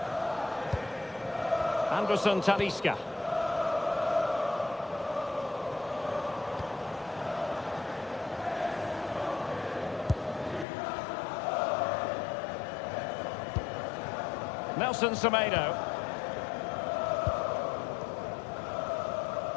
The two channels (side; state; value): right; drops out; at 10.7 s